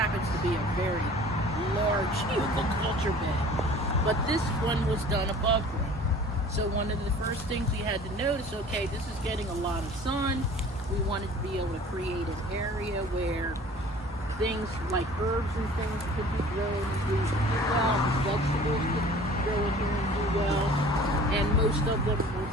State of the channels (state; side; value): normal; both; correlation 0.47